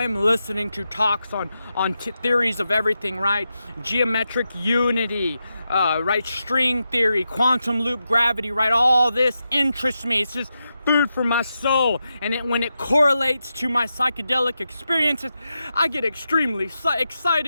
am listening to talks on theories of everything, right? Geometric unity, right? String theory, quantum loop gravity, right? All this interests me. It's just food for my soul. And when it correlates to my psychedelic experiences, I get extremely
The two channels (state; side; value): inverted; both; correlation -0.88